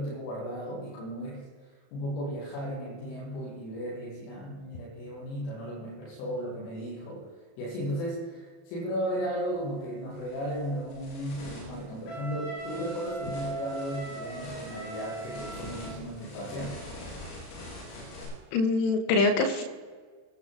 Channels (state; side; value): late; right; 36 ms